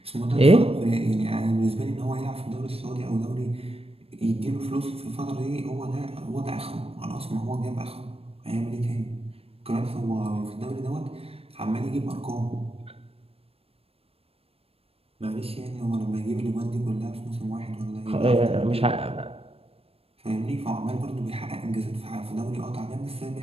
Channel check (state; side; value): late; left; 0.28 ms